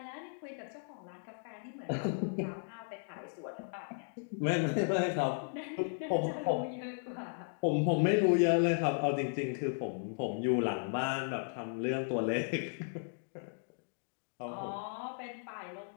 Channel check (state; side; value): silent; right; digital silence